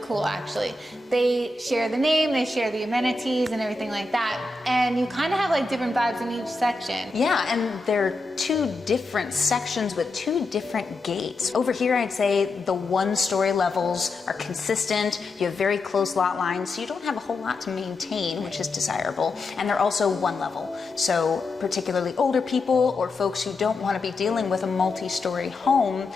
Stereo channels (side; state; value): right; quieter; 3.2 dB